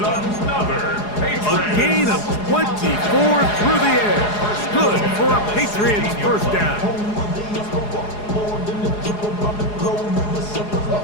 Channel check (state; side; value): late; right; 4.8 ms